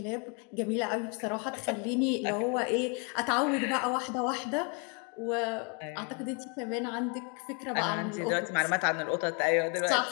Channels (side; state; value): right; quieter; 35.7 dB